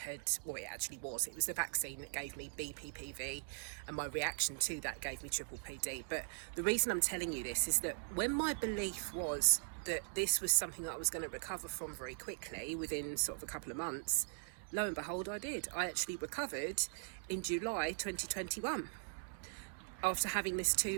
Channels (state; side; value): silent; left; digital silence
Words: well, it actually was. It was the vaccine that gave me BPPV, and my reaction to that gave me PPPD. But the reason I'm telling you this is that when my belief was that this was something that I was going to recover from very quickly, within sort of a couple of months, lo and behold, I did. I actually recovered in July 2021 after having this